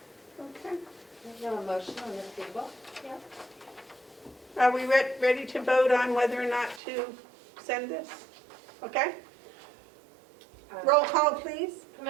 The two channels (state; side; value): drops out; left; at 6.8 s